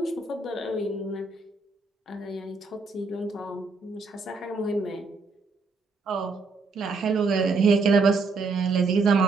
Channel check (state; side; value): quieter; left; 4.0 dB